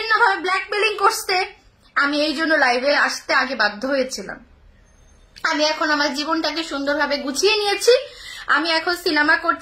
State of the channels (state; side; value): identical; both; correlation 1.00